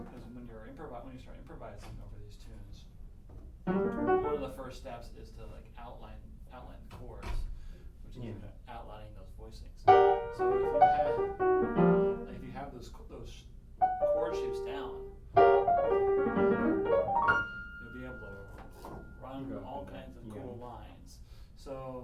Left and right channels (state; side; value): identical; both; correlation 1.00